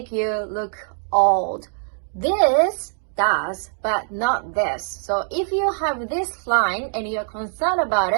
you look old. This does, but not this. So if you have this line and you're concerned about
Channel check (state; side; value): silent; left; digital silence